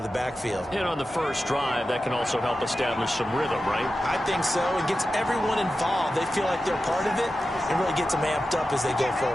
the backfield. And on the first drive, that can also help establish some rhythm, right? I think so. It gets everyone involved. They feel like they're part of it. It really gets them amped up as they go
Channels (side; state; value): both; normal; correlation 0.92